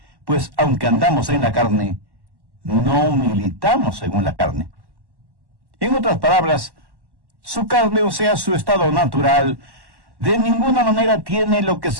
pues aunque andamos en la carne, no militamos según la carne. En otras palabras, su carne, o sea, su estado natural, de ninguna manera tiene lo que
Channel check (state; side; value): late; left; 1.1 ms